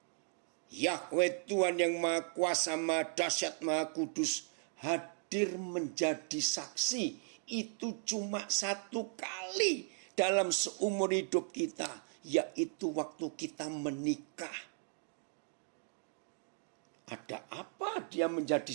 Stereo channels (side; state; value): left; silent; 53 dB below the other